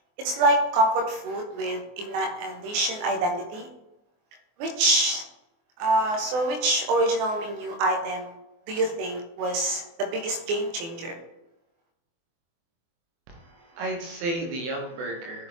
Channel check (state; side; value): late; left; 24 ms